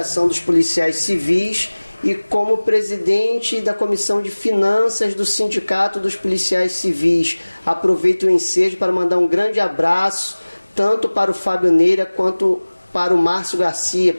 dos Policiais Civis e como presidente da Comissão de Finanças do Sindicato dos Policiais Civis. Aproveito o ensejo para mandar um grande abraço, tanto para o Fábio Neira quanto para o Márcio Garcia,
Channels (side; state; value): both; inverted; correlation -1.00